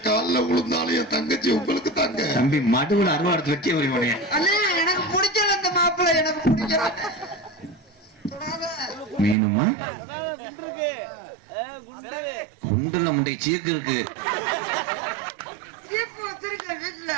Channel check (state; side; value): drops out; left; at 9.3 s